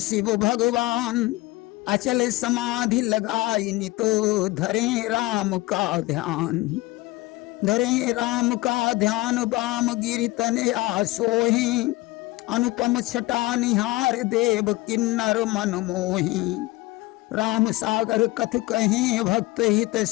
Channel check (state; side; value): quieter; right; 20.1 dB